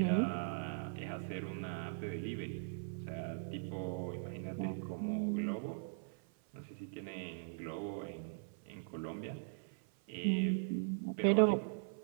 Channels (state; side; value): silent; left; 51 dB below the other